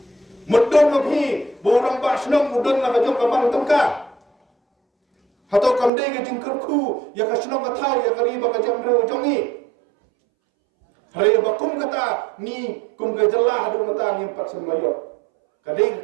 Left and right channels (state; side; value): drops out; left; at 5.9 s